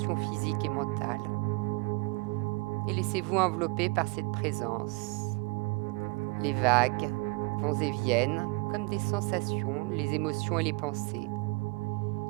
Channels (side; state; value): left; quieter; 28.4 dB